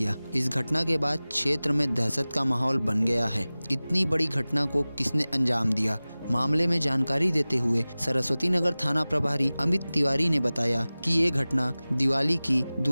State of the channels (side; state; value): both; inverted; correlation -0.98